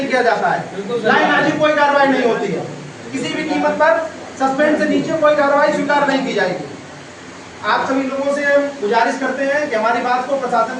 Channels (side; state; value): both; identical; correlation 1.00